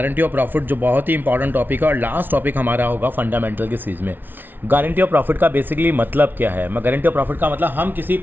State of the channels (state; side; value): late; left; 0.093 ms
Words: ऑफ प्रॉफिट, जो बहुत ही इंपॉर्टेंट टॉपिक है और लास्ट टॉपिक हमारा होगा फंडामेंटल की सीरीज़ में। गारंटी ऑफ प्रॉफिट का बेसिकली मतलब क्या है? मैं गारंटी ऑफ प्रॉफिट का मतलब हम किसी